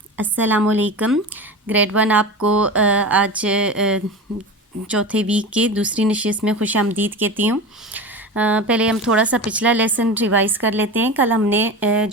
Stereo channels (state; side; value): normal; both; correlation 0.28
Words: अस्सलामुअलैकुम। ग्रेड 1 आपको आज चौथे वीक के दूसरी नशिस्त में खुश आमदीद कहती हूँ। पहले हम थोड़ा सा पिछला लेसन रिवाइज़ कर लेते हैं। कल हमने